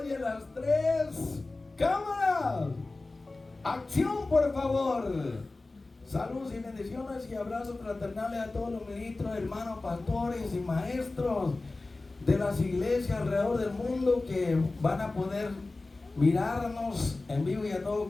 y a las 3. ¡Cámara! ¡Acción, por favor! Saludos y bendiciones y abrazos fraternales a todos los ministros, hermanos, pastores y maestros de las iglesias alrededor del mundo que van a poder mirarnos en vivo y a todo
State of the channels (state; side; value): quieter; right; 3.3 dB